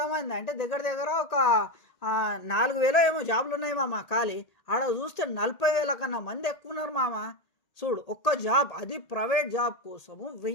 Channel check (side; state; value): right; late; 1.8 ms